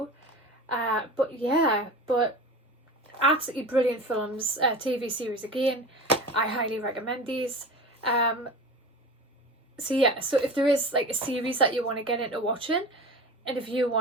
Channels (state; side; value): normal; both; correlation 0.33